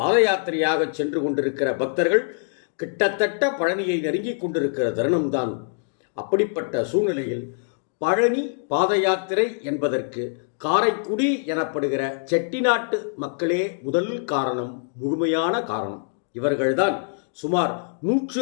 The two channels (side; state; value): right; silent; digital silence